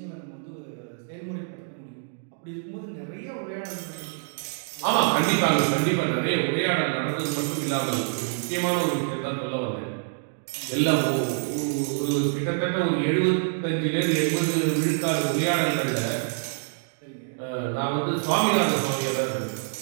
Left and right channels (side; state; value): left; silent; digital silence